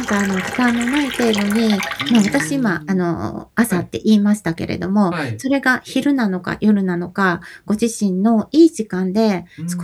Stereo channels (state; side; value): identical; both; correlation 1.00